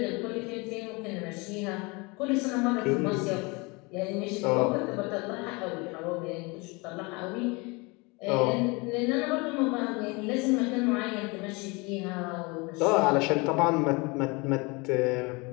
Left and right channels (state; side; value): quieter; right; 27.2 dB